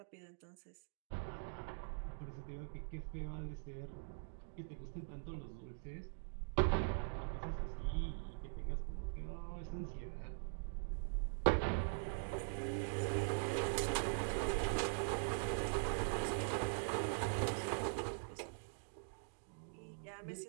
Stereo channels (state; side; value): silent; left; digital silence